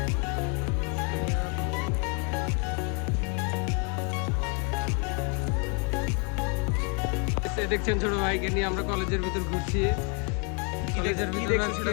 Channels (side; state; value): right; quieter; 36.5 dB